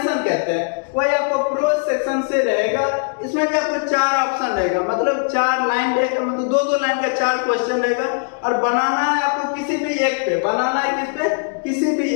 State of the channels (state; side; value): silent; right; digital silence